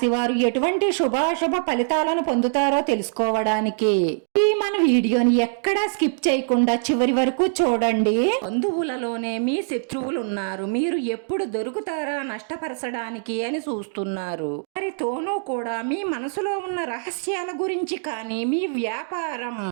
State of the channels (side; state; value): left; silent; digital silence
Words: వారు ఎటువంటి శుభాశుభ ఫలితాలను పొందుతారో తెలుసుకోవడానికి ఈ మన వీడియోని ఎక్కడా స్కిప్ చేయకుండా చివరి వరకు చూడండి. బంధువులలోనే మీ శత్రువులు ఉన్నారు. మీరు ఎప్పుడు దొరుకుతారా నష్టపరచడానికి అని చూస్తున్నారు. వారితోనూ కూడా మీ మనసులో ఉన్న రహస్యాల గురించి కానీ మీ వ్యాపారం